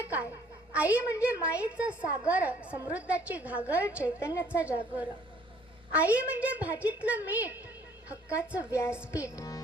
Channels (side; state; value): both; normal; correlation 0.59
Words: काय? आई म्हणजे मायेचा सागर, समृद्धाची घागर, चैतन्याचा जागर. आई म्हणजे भाजीतलं मीठ, हक्काचं व्यासपीठ.